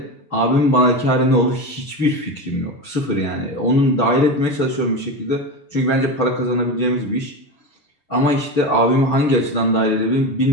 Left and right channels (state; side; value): late; right; 6.9 ms